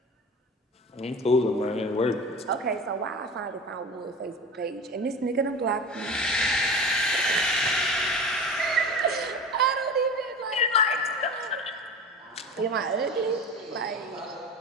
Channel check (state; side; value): normal; both; correlation 0.33